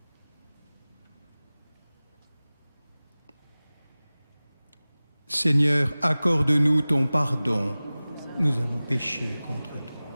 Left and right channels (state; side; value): inverted; both; correlation -0.98